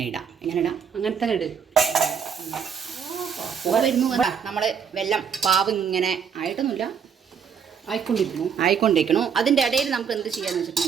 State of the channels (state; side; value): quieter; left; 7.1 dB